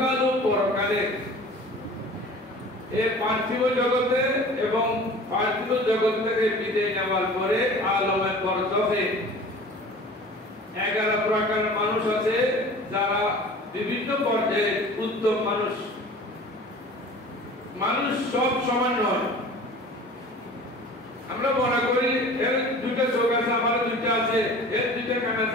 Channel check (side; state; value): both; normal; correlation 0.42